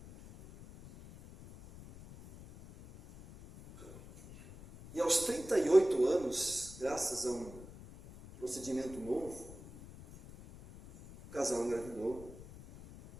E aos 38 anos, graças a um procedimento novo, o casal engravidou.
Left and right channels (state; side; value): noise; left; rumble, 17 dB below the sound